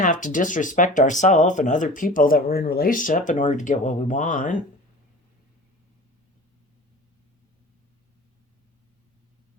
to disrespect ourselves and other people that we're in relationship in order to get what we want.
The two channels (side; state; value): both; normal; correlation 0.38